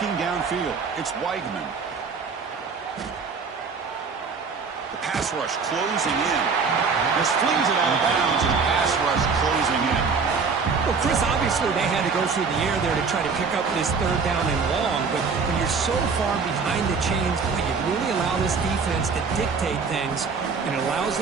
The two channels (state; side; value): quieter; left; 5.1 dB